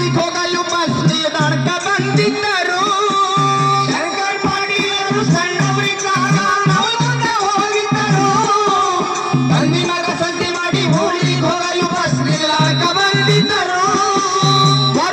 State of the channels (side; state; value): both; identical; correlation 1.00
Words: ಹೋಗಲು ಬಸ್ ನಿಲ್ದಾಣಕ್ಕ ಬಂದಿದ್ದರು. ಶಂಕರ್ ಪಾಟೀಲರು ಸಣ್ಣವರಿದ್ದಾಗ ನವಲಗುಂದಕ್ಕೆ ಹೋಗಿದ್ದರು. ತಂದಿ ಮಗ ಸಂತಿ ಮಾಡಿ ಊರಿಗೆ ಹೋಗಲು ಬಸ್ ನಿಲ್ದಾಣಕ್ಕ ಬಂದಿದ್ದರು.